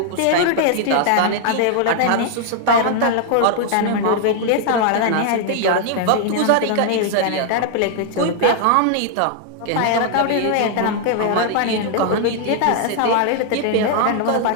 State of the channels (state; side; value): different; both; correlation 0.00